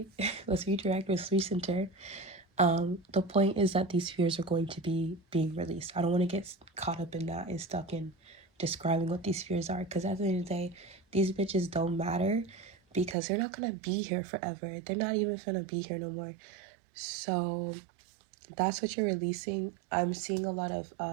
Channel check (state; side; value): drops out; left; at 13.2 s